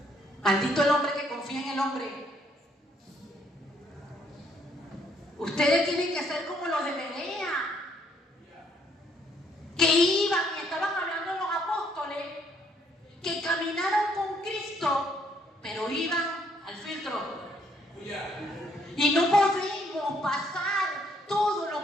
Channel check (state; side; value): normal; both; correlation 0.68